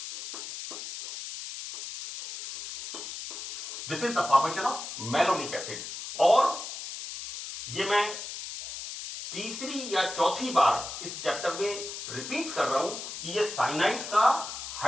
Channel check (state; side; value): noise; left; hiss, 8 dB below the sound